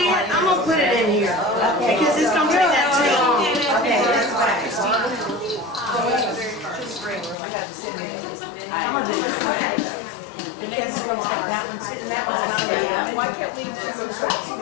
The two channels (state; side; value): drops out; right; at 7.4 s